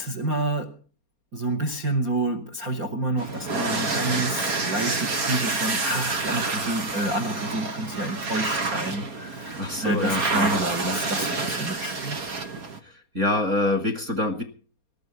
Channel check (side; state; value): left; late; 4.3 ms